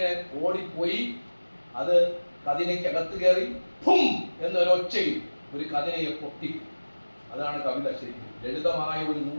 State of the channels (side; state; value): both; inverted; correlation -1.00